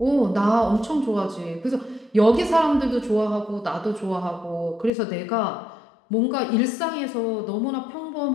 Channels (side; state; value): right; drops out; at 4.9 s